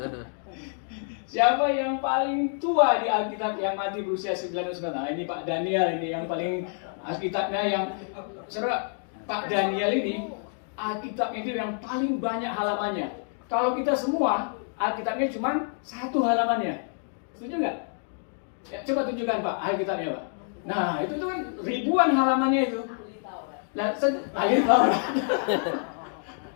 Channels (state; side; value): silent; right; 58 dB below the other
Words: Siapa yang paling tua di Alkitab yang mati berusia 99 tahun? Nah, ini Pak Daniel ini yang paling Alkitabnya yang saudara. Pak Daniel ini Alkitabnya itu yang paling banyak halamannya. Kalau kita semua Alkitabnya cuma 1 halamannya. Setuju nggak? Ya, coba tunjukkan Pak Alkitabnya Pak. Nah itu tuh kan ribuan halamannya itu. Nah, ahli Taurat.